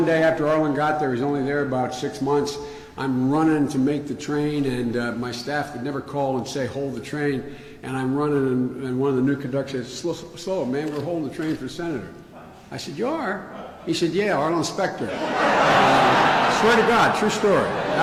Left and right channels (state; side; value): identical; both; correlation 1.00